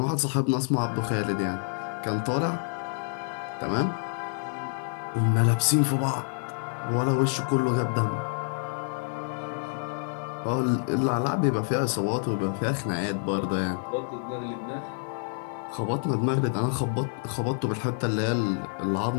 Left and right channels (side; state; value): right; silent; 59 dB below the other